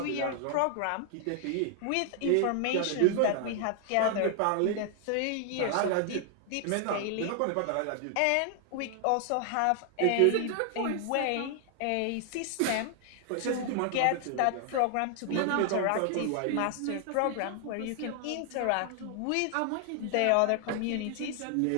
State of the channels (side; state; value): both; different; correlation 0.00